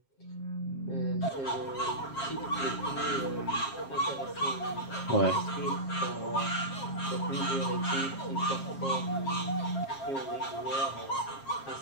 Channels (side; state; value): right; late; 7.4 ms